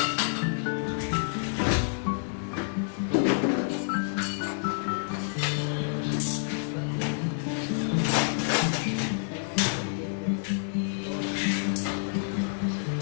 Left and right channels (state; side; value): silent; right; digital silence